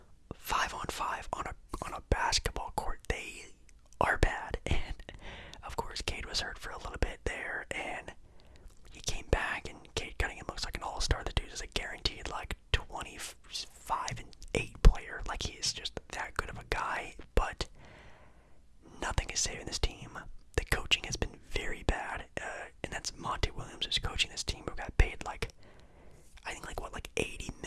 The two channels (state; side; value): identical; both; correlation 1.00